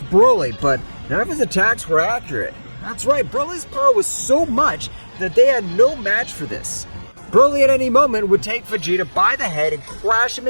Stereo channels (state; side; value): inverted; both; correlation -1.00